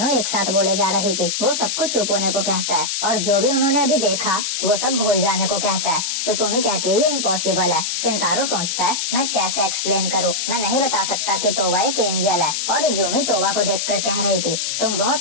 एक साथ बोले जा रही थी। वो सब कुछ चुप होने को कहता है और जो भी उन्होंने अभी देखा वो सब भूल जाने को कहता है। सुसुमी कहती है, ये इम्पॉसिबल है। शिनतारो सोचता है, मैं कैसे एक्सप्लेन करूँ, मैं नहीं बता सकता कि तोवा एक एंजल है। और इजुमी तोवा को देखकर कह रही थी, तुम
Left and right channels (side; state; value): left; noise; hiss, 1 dB below the sound